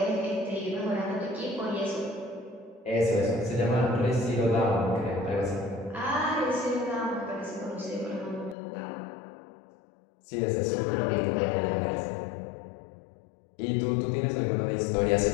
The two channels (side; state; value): right; drops out; at 8.6 s